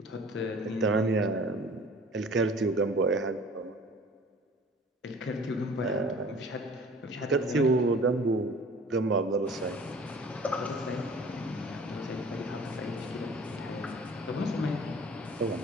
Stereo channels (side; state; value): both; normal; correlation 0.47